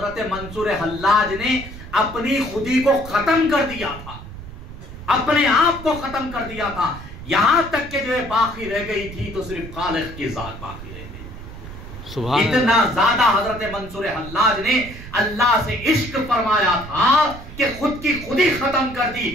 منصور حلاج نے اپنی خودی کو ختم کر دیا تھا، اپنے آپ کو ختم کر دیا تھا، یہاں تک کہ جو ہے باقی رہ گئی تھی تو صرف خالق کی ذات باقی رہ گئی۔ اتنا زیادہ حضرت منصور حلاج نے اللہ سے عشق فرمایا تھا کہ خود کی خودی ختم کر دی،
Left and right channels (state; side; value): noise; right; rumble, 13 dB below the sound